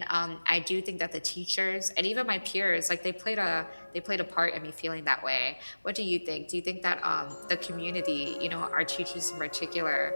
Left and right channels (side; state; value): both; inverted; correlation -1.00